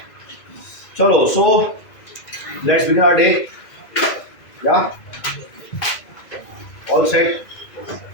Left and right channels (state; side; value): late; right; 2.0 ms